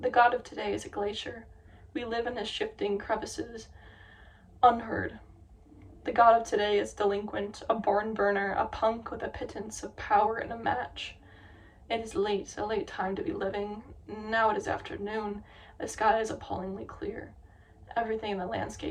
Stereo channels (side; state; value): both; identical; correlation 1.00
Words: The God of today is a glacier. We live in his shifting crevices, unheard. The God of today is delinquent, a barn burner, a punk with a pittance of power and a match. It is late, a late time to be living. Now it is afternoon. The sky is appallingly clear. Everything in the